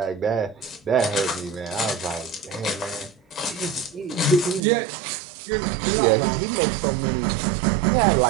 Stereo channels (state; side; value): drops out; left; at 4.6 s